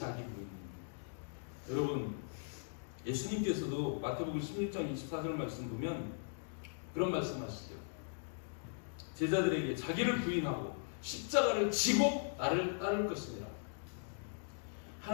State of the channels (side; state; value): right; silent; digital silence